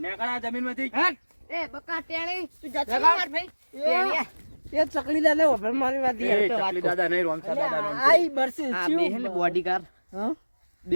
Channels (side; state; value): both; inverted; correlation -1.00